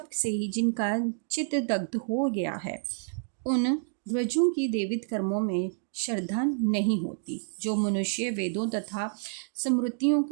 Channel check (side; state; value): left; silent; digital silence